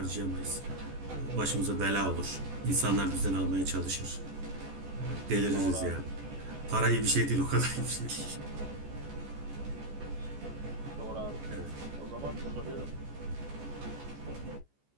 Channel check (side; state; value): left; late; 14 ms